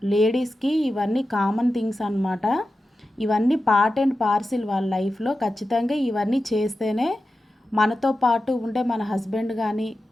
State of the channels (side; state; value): both; normal; correlation 0.92